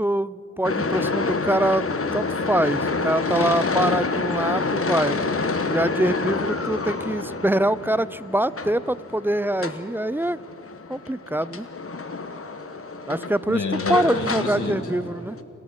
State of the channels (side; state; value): both; normal; correlation 0.61